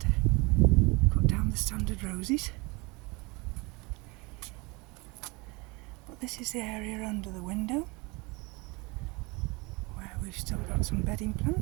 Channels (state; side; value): quieter; left; 26.8 dB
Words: cut down the standard roses. But this is the area under the window where we've still got some bedding